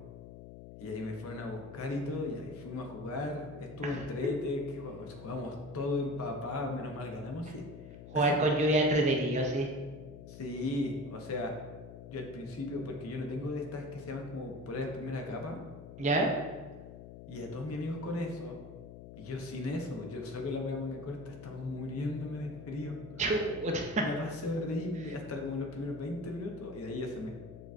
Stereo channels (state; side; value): noise; left; hum, 13 dB below the sound